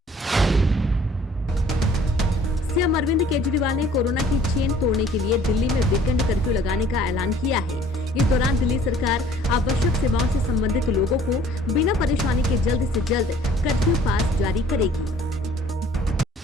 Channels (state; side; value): normal; both; correlation 0.55